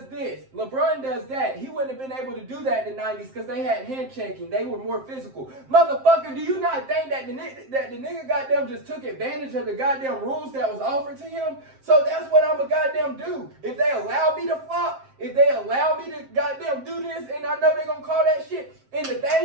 this. LeBron does that. He wouldn't have been able to do that in the 90s because they had hand checking. They were more physical. Motherfucker, do you not think that the nigga goddamn just took advantage of the goddamn rules that was offered to him? So that's what I'm a goddamn do. If they allow me to flop, if they allow me to goddamn do this, and I know they gonna call that shit. And the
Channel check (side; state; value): left; late; 7.6 ms